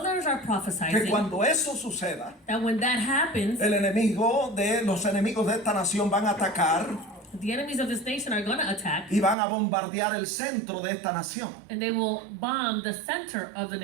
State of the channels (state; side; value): drops out; left; at 9.3 s